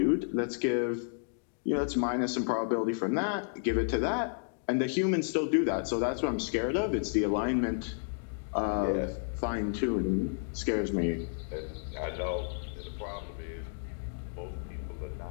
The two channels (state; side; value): silent; right; digital silence